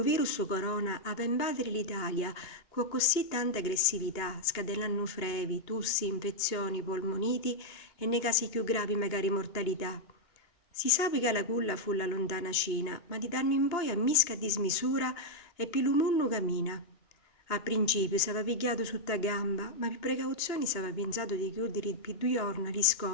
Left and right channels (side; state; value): right; late; 2.9 ms